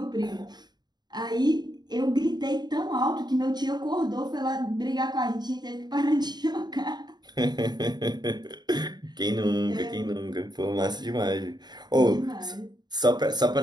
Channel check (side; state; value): left; late; 0.20 ms